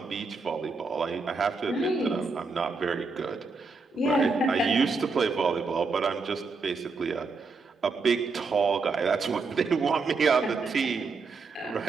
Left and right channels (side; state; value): left; quieter; 4.2 dB